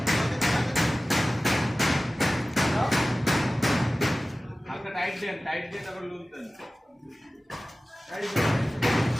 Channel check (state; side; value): normal; both; correlation 0.96